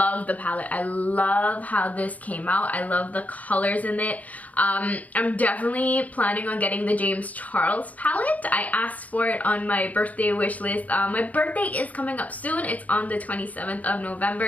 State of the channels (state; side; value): late; right; 0.073 ms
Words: the palette. I love how this came out. I love the colors in it. I'm definitely planning on getting the James Charles palette. I asked for it on my birthday wish list. My birthday is coming up soon. It's on the 27th of